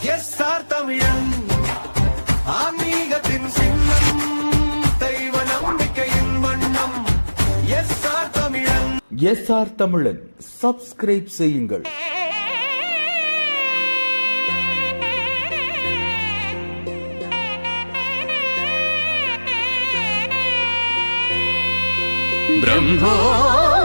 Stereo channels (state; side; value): inverted; both; correlation -1.00